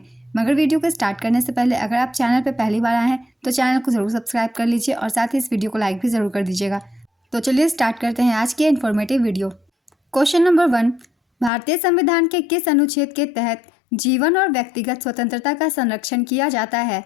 मगर वीडियो को स्टार्ट करने से पहले अगर आप चैनल पर पहली बार आए हैं तो चैनल को ज़रूर सब्सक्राइब कर लीजिए और साथ ही इस वीडियो को लाइक भी ज़रूर कर दीजिएगा। तो चलिए स्टार्ट करते हैं आज की इन्फॉर्मेटिव वीडियो। क्वेश्चन नंबर 1, भारतीय संविधान के किस अनुच्छेद के तहत जीवन और व्यक्तिगत स्वतंत्रता का संरक्षण किया जाता है?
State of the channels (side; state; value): right; drops out; at 11.5 s